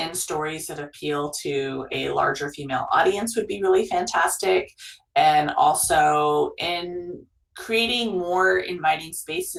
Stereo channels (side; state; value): both; identical; correlation 1.00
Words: stories that appeal to a larger female audience would be really fantastic. And also in creating more inviting